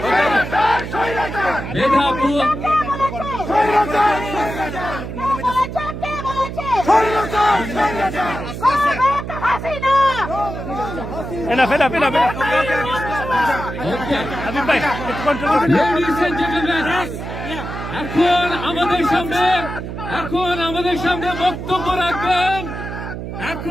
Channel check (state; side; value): noise; right; hum, 7 dB below the sound